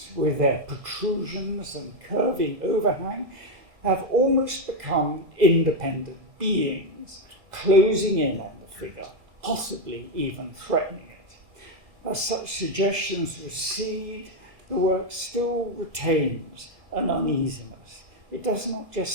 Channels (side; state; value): left; late; 2.0 ms